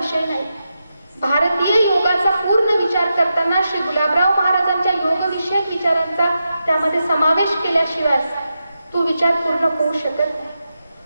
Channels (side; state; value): both; inverted; correlation -0.88